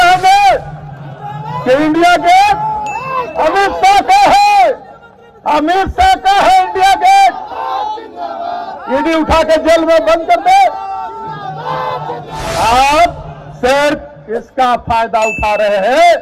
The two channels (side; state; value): both; identical; correlation 1.00